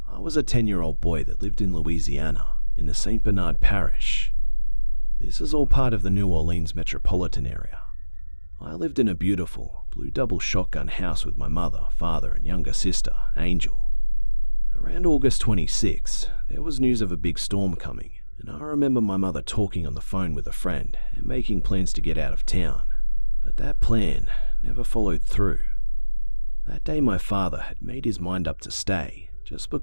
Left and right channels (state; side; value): inverted; both; correlation -1.00